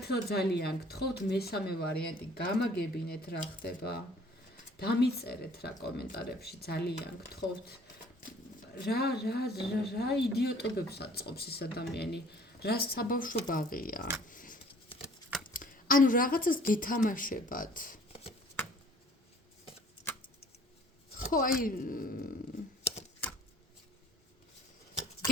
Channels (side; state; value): both; normal; correlation 0.54